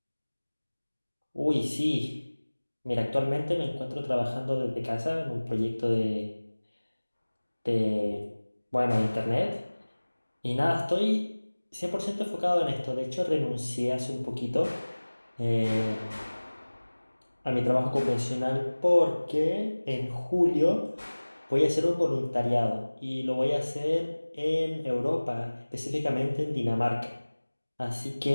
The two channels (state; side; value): inverted; both; correlation -1.00